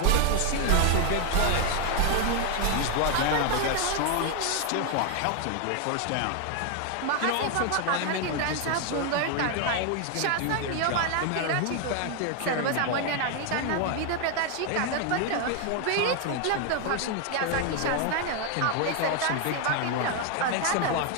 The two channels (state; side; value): different; both; correlation 0.00